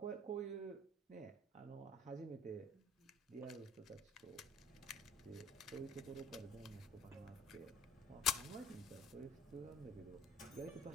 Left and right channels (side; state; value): both; normal; correlation 0.52